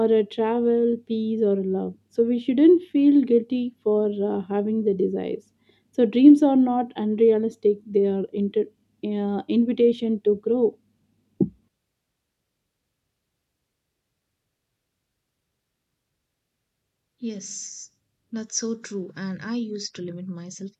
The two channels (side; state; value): both; identical; correlation 1.00